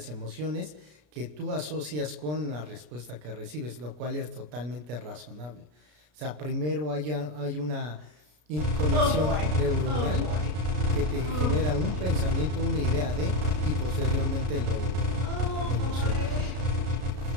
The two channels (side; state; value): left; late; 33 ms